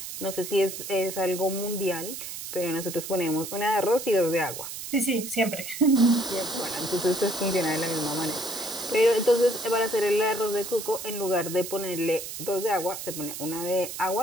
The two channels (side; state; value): right; noise; hiss, 8 dB below the sound